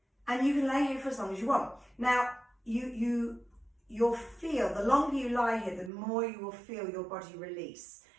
And you can lay here for as long as you want. Now, you'll feel, the longer you lie here, the more you will feel your body release.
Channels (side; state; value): left; drops out; at 5.9 s